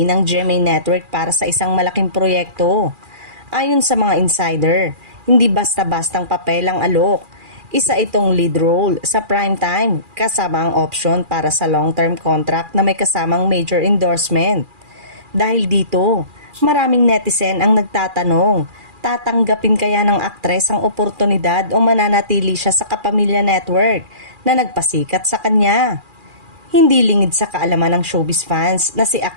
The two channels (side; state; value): left; late; 2.4 ms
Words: ng GMA Network para sa isang malaking proyekto. Ayon sa mga insider, hindi basta-bastang papel ang alok. Isa itong lead role sa primetime kasama ang option para sa long-term contract na may kasamang major endorsement. Dahil dito, maraming netizen ang nagtatanong, tatanggapin kaya ng aktres ang oportunidad o mananatili siya sa Kapamilya Network na nagpasikat sa kanya? Hindi lingid sa kaalaman ng showbiz fans na si